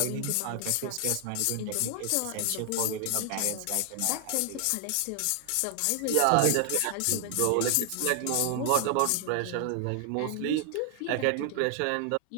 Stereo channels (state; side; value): different; both; correlation 0.00